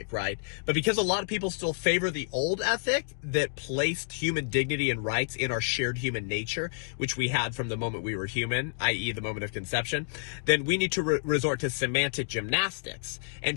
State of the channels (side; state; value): right; silent; digital silence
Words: right? But because a lot of people still favor the old ethic that placed human dignity and rights in our shared human nature, which we had from the moment we were human, i.e. the moment of conception, then we need to resort to semantic gymnastics and